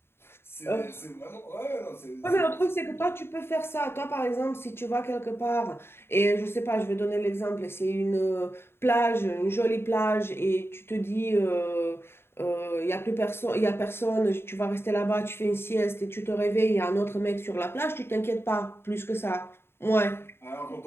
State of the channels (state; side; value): late; right; 0.11 ms